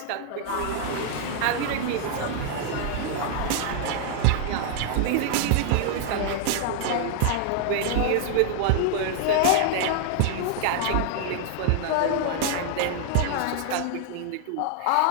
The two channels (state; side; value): different; both; correlation 0.00